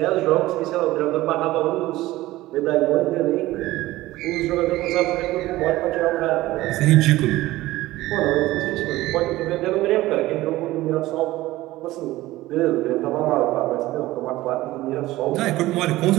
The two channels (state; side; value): quieter; left; 17.3 dB